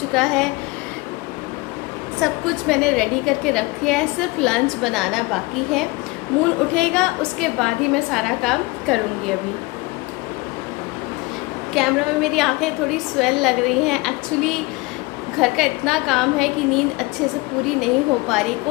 है, सब कुछ मैंने रेडी करके रख दिया है, सिर्फ लंच बनाना बाकी है। मून उठेगा उसके बाद ही मैं सारा काम करूँगी। अभी कैमरा में मेरी आंखें थोड़ी स्वेल लग रही हैं। एक्चुअली घर का इतना काम है कि नींद अच्छे से पूरी नहीं हो पा रही।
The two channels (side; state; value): right; quieter; 23.9 dB